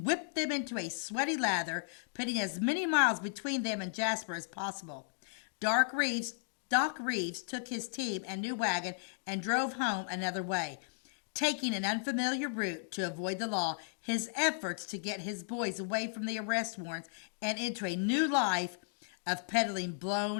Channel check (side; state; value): right; silent; digital silence